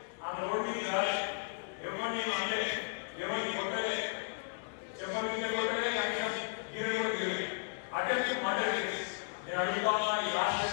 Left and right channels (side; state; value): right; silent; digital silence